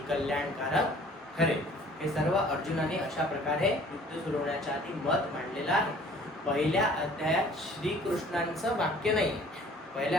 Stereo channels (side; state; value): both; normal; correlation 0.53